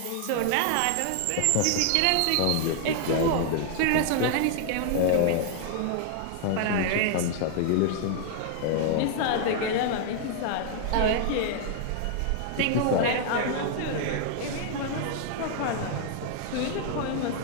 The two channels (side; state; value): both; different; correlation 0.00